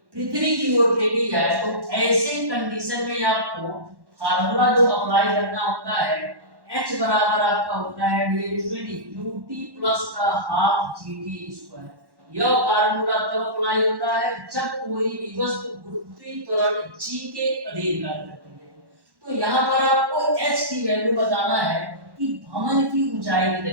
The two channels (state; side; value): late; left; 1.1 ms